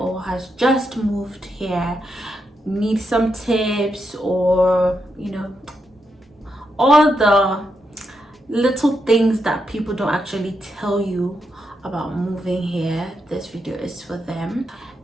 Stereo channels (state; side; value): normal; both; correlation 0.83